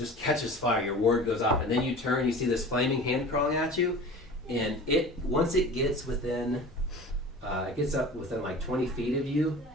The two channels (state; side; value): normal; both; correlation 0.39